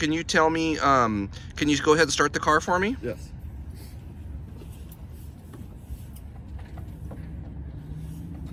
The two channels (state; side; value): identical; both; correlation 1.00